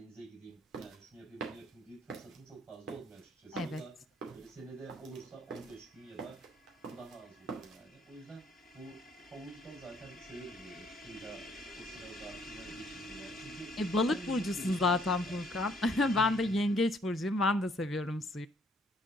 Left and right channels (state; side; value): normal; both; correlation 0.65